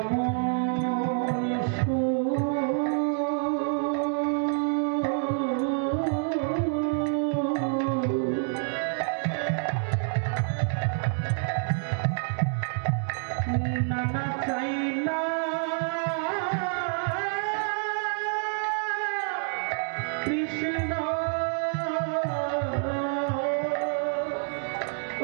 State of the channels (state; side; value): silent; left; 58 dB below the other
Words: নানা চাই না কৃষ্ণ,